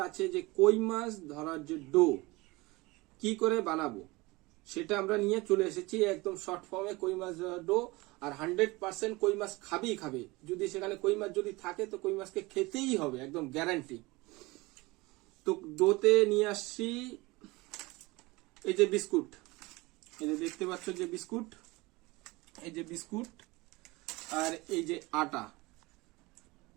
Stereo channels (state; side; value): quieter; left; 22.7 dB